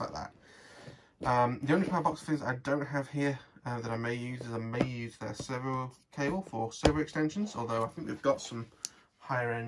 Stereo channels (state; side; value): identical; both; correlation 1.00